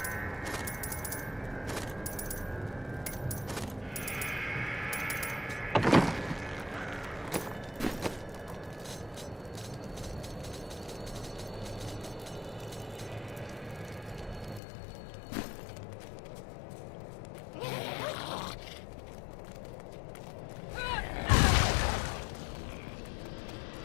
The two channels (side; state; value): right; drops out; at 14.6 s